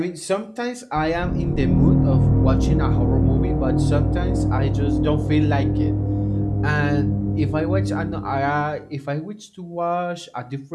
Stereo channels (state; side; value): identical; both; correlation 1.00